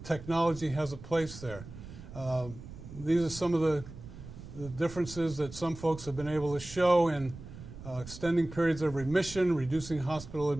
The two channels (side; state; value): right; noise; rumble, 14 dB below the sound